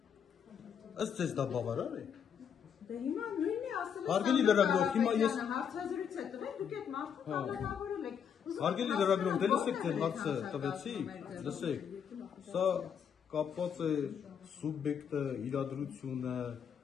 Ըստ ձեզ դա բավարար է։ Դե հիմա նույնն է ասել։ Հարգելի լրագրող, հիմա ես հարցազրույց է տվել, դուք այդ մարդուն կալանավորել եք։ Հարգելի լրագրող, դե լսեք, թե հարցը տվեցի, լսեք։ Սա կապված է սուբյեկտը, իրադրությունը,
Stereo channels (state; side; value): quieter; right; 7.7 dB